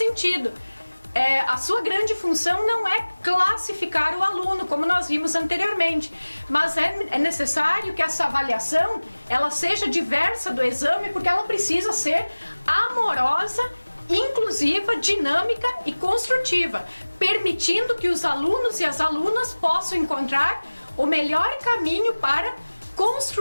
A sua grande função não é classificar o aluno, como nós vimos anteriormente, mas é necessário que essa avaliação ela seja diversa do exame, porque ela precisa ser amorosa, inclusiva, dinâmica e construtiva, permitindo que os alunos e as alunas possam encontrar o melhor caminho para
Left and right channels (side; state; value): both; inverted; correlation -1.00